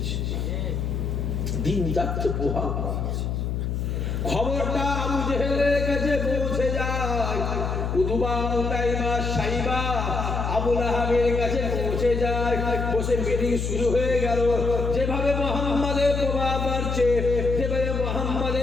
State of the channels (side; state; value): left; noise; hum, 1 dB below the sound